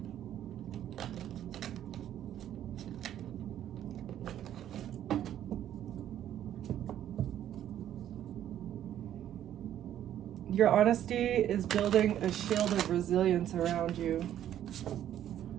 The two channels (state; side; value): quieter; left; 11.1 dB